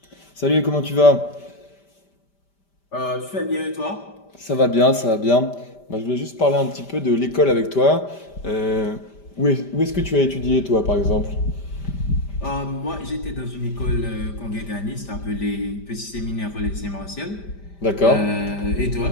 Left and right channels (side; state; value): right; late; 5.1 ms